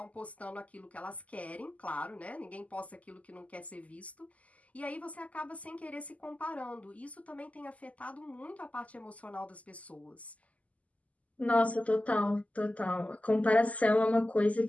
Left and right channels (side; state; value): right; late; 0.071 ms